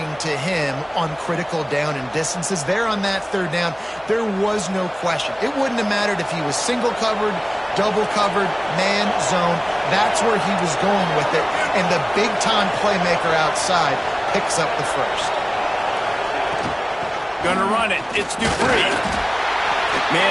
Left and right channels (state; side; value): identical; both; correlation 1.00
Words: to him on critical down and distances. There on that 3rd down, there was no question. It wouldn't have mattered if he was single covered, double covered, man, zone. That's where he was going with it, and the big-time playmaker outside picks up the first. Gonna run it. It's Dupree.